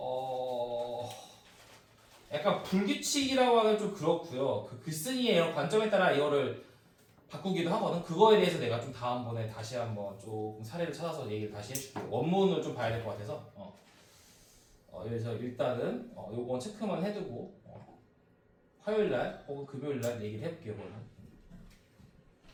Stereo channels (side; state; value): both; identical; correlation 1.00